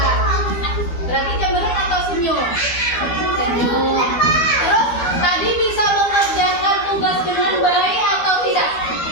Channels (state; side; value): late; right; 12 ms